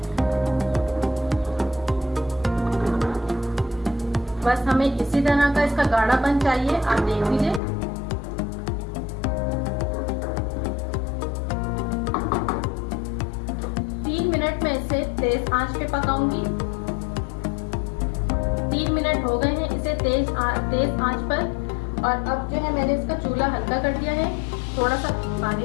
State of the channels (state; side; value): drops out; right; at 7.6 s